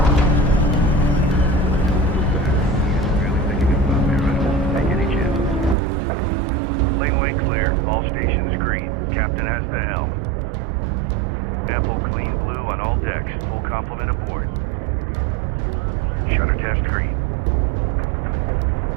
Laneway clear. All stations green. Captain has the helm. Ample clean blue on all decks. Full complement aboard. Shutter test green.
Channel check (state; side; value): drops out; left; at 5.8 s